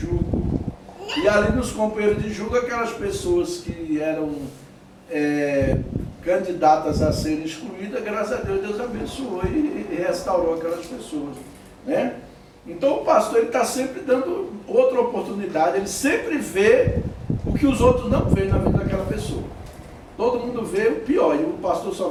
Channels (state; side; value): identical; both; correlation 1.00